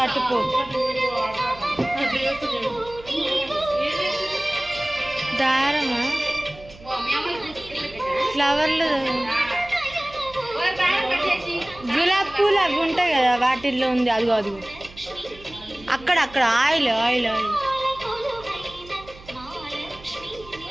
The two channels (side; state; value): right; noise; hum, 20 dB below the sound